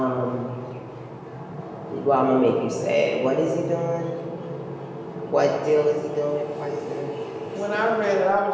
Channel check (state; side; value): identical; both; correlation 1.00